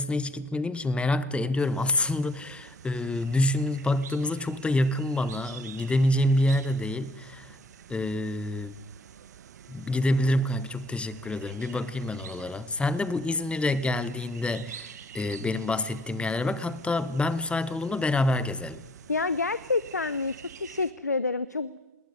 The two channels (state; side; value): normal; both; correlation 0.59